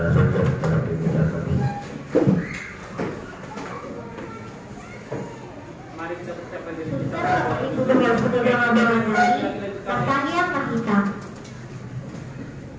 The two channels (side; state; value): both; identical; correlation 1.00